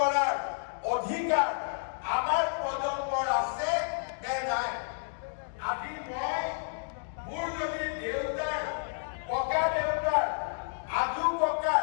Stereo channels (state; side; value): silent; right; digital silence